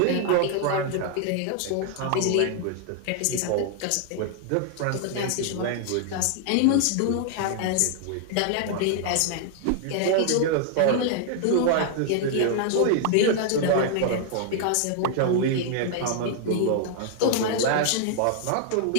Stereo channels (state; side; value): different; both; correlation 0.00